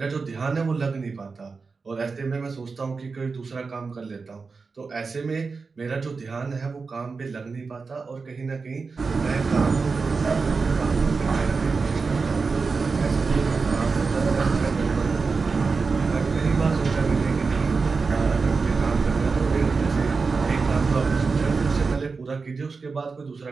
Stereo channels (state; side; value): quieter; left; 4.6 dB